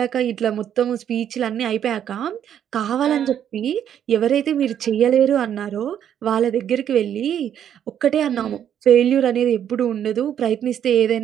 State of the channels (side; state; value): left; quieter; 9.6 dB